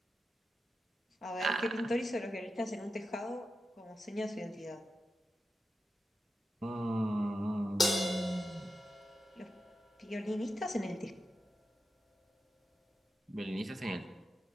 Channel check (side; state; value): both; normal; correlation 0.90